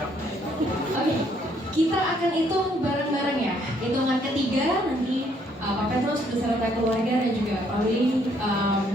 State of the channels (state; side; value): normal; both; correlation 0.68